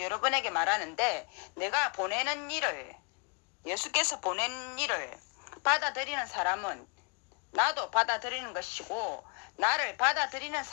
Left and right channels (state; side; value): quieter; right; 34.8 dB